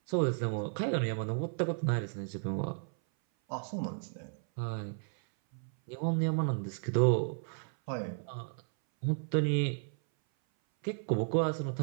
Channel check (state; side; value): silent; left; 55 dB below the other